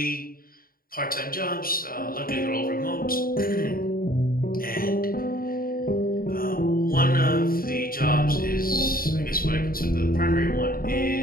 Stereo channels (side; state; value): right; late; 0.42 ms